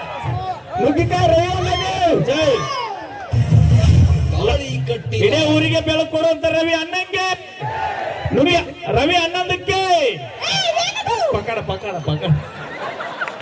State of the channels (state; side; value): identical; both; correlation 1.00